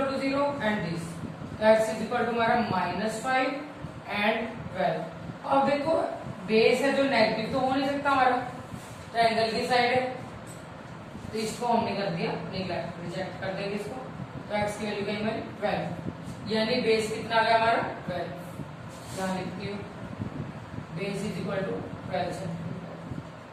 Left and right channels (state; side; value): identical; both; correlation 1.00